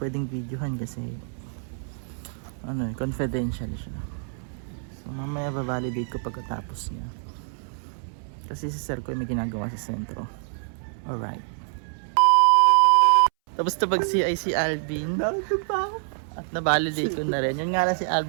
videohan kasi confidential siya. So mamaya ba-validate ko pagkatapos niya. Kasi si Sir ko may ginagawa sa sentro. Alright. Tapos pag CI si Alvin, at na-validate ko na rin. Yun nga lang si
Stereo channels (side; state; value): left; silent; 61 dB below the other